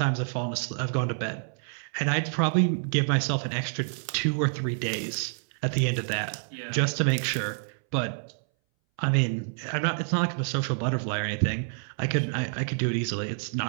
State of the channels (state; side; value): silent; left; 59 dB below the other